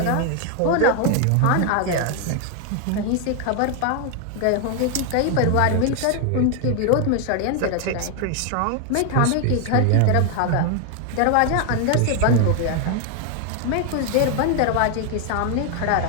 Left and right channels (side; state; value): both; different; correlation 0.01